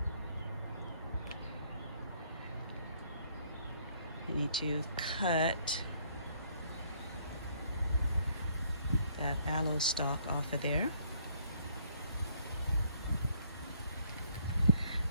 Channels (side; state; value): both; inverted; correlation -0.64